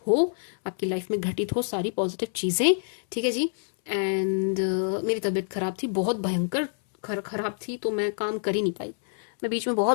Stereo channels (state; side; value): silent; right; 60 dB below the other